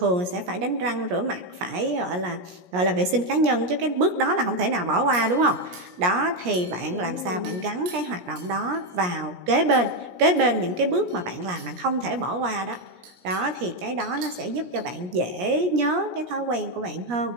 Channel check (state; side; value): late; left; 17 ms